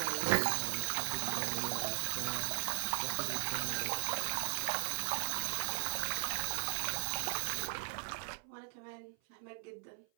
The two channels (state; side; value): silent; left; 52 dB below the other